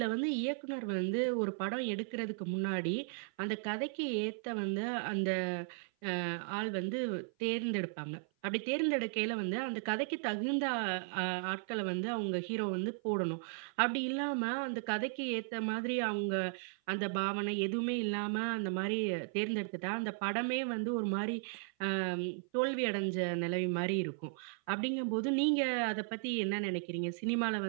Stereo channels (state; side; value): silent; left; 54 dB below the other